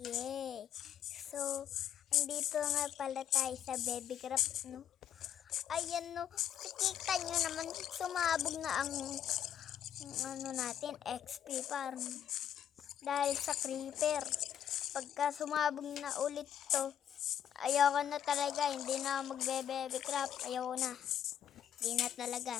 Yay! So, andito nga pala tayo sa Baby Craft, no? Ayan, no, nakikita nyo naman, sumabog na ang ano natin, XP farm. Dahil sa creeper. Pagka sumabog na ulit to, ayoko na talaga, hindi na magbe-Baby Craft, ayoko na. Hindi na talaga,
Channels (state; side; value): quieter; right; 9.8 dB